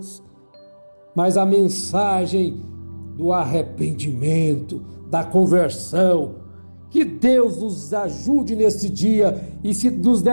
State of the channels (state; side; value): inverted; both; correlation -1.00